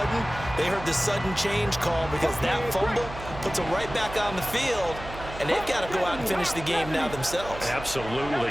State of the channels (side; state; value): right; noise; hum, 12 dB below the sound